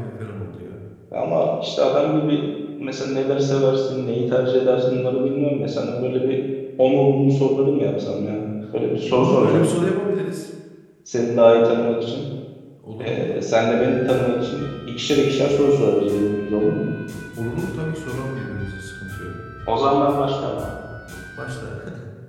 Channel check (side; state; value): both; identical; correlation 1.00